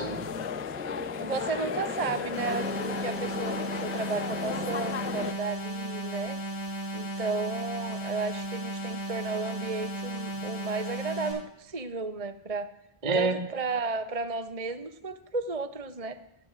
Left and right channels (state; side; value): late; left; 1.6 ms